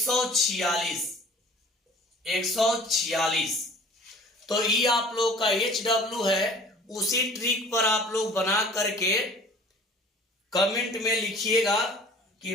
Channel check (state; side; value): normal; both; correlation 0.48